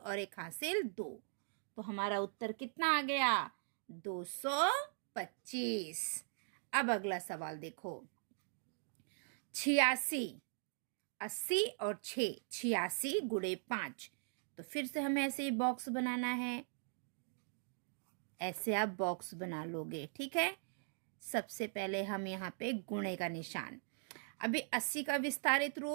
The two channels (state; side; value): silent; left; digital silence